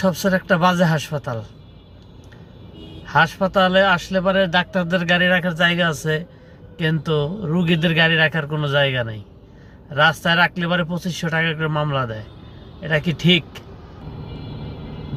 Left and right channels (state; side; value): identical; both; correlation 1.00